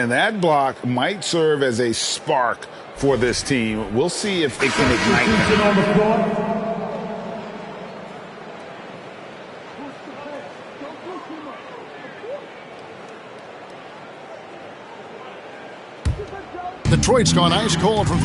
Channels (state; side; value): identical; both; correlation 1.00